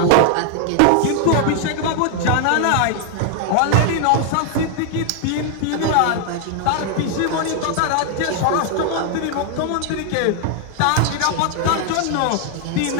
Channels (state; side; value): different; both; correlation 0.00